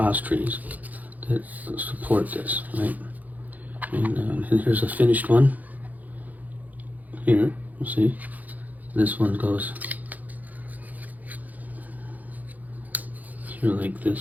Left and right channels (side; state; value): left; late; 0.080 ms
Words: trees that support this, right? And here's a finished one. Here, you see, this one goes here like